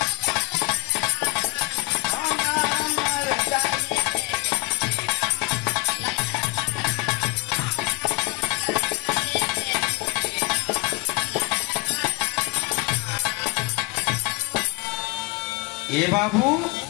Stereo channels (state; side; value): quieter; right; 24.8 dB